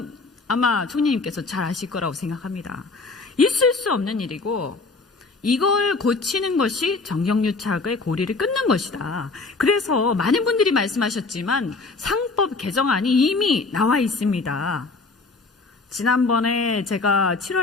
아마 총리님께서 잘 아실 거라고 생각합니다. 있을 수 없는 일이고 이걸 고치는 것이 정경유착의 고리를 끊는 것이다. 그래서 많은 분들이 말씀하셨지만 상법 개정안이 이미 나와 있습니다. 지난번에 제가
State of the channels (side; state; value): right; quieter; 3.8 dB